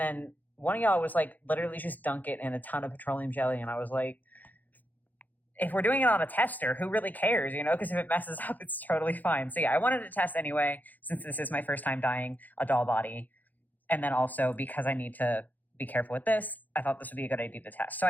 one of y'all was like, literally just dunk it in a ton of petroleum jelly, and I was like, if we're doing it on a tester, who really cares, you know? Because if it messes up, it's totally fine. So yeah, I wanted to test anyway, since this is my first time dyeing a doll body. And then also because I need to be careful with this, I thought this would be a good idea to test. So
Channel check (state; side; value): late; right; 0.083 ms